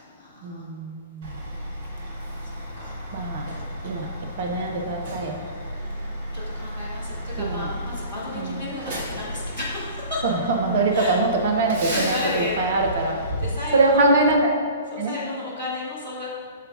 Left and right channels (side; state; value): both; inverted; correlation -0.44